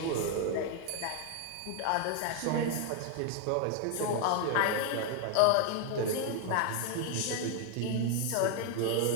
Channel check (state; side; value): different; both; correlation 0.00